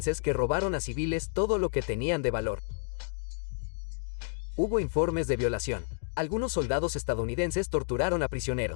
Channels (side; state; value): right; silent; digital silence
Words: que robaron a civiles todo lo que tenían de valor. Hubo informes de violación. Algunos soldados estadounidenses torturaron a